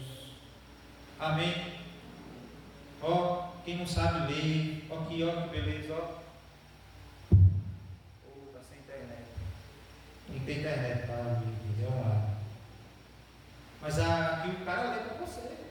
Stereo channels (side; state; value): both; identical; correlation 1.00